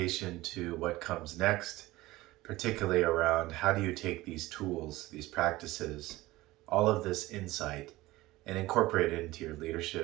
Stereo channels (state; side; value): quieter; left; 18.7 dB